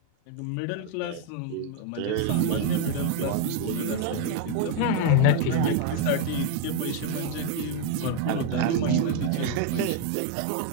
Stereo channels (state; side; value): different; both; correlation 0.01